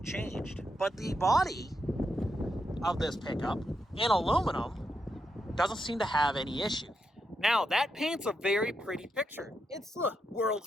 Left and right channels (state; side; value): normal; both; correlation 0.83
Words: changed, but the body of this pickup in aluminum doesn't seem to have any issue. Now, that paints a very pretty picture. It's the